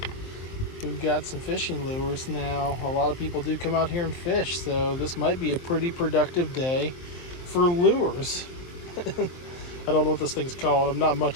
we've got some fishing lures now. A lot of people do come out here and fish, so this might be a pretty productive day for lures. I don't know what this thing's called. I'm not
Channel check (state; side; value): late; right; 23 ms